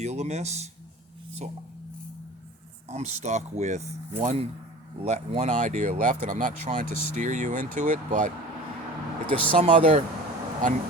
a miss. So I'm stuck with one idea left, and I'm not trying to steer you into it, but if there's some other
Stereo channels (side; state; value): both; normal; correlation 0.39